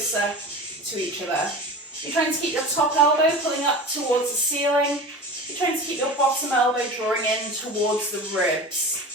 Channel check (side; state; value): both; normal; correlation 0.33